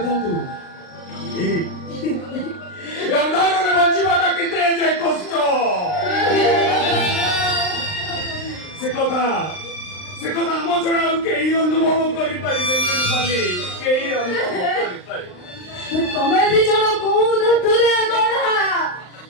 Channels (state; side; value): late; right; 39 ms